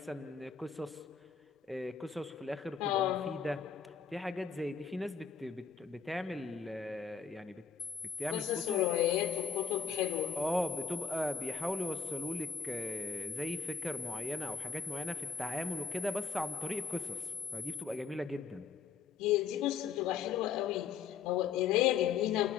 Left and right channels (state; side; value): quieter; right; 6.4 dB